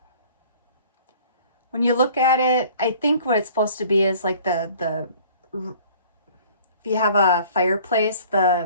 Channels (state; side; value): inverted; both; correlation -0.51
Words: when you look at it, I think what it's supposed to be is like if you have a fireplace,